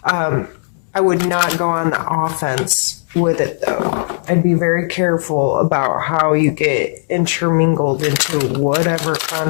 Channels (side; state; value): right; silent; 67 dB below the other